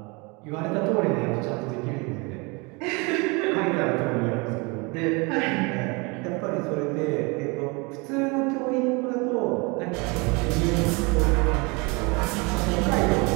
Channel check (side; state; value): left; quieter; 28.3 dB